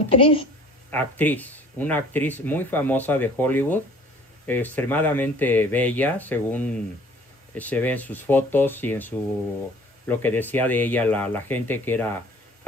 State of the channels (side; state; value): both; normal; correlation 0.51